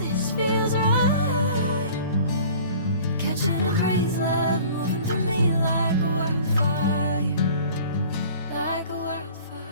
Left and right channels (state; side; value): inverted; both; correlation -0.46